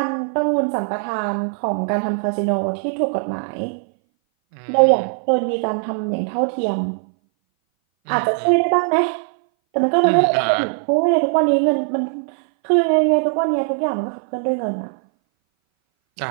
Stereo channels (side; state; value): left; silent; 60 dB below the other